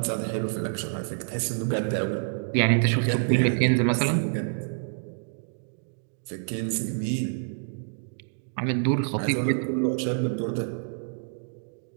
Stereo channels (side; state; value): left; silent; digital silence